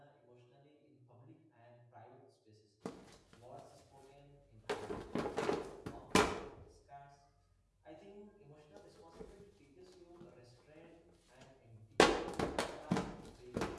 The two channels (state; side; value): identical; both; correlation 1.00